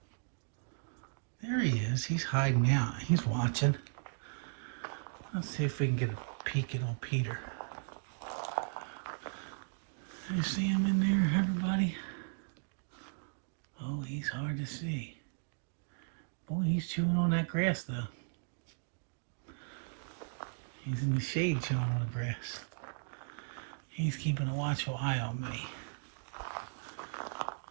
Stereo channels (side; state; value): left; silent; digital silence